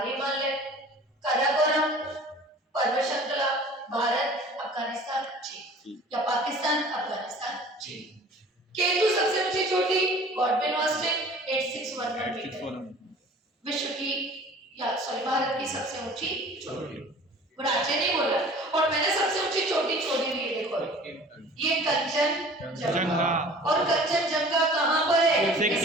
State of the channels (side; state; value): both; normal; correlation 0.46